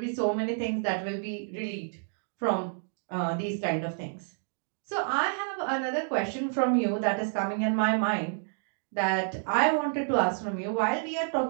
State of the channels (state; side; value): silent; left; 58 dB below the other